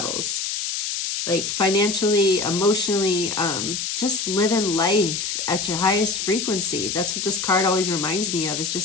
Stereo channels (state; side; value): noise; left; hiss, 3 dB below the sound